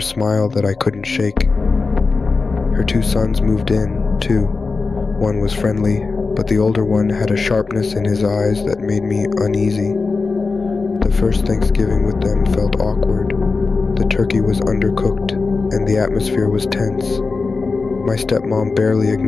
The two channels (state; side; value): quieter; right; 4.2 dB